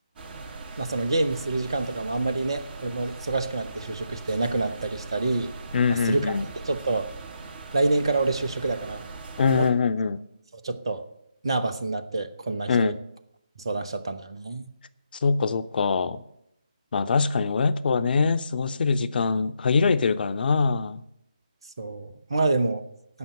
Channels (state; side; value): inverted; both; correlation -0.81